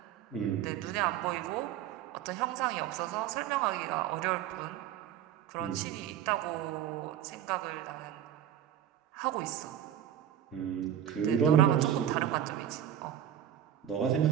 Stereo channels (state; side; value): quieter; left; 10.5 dB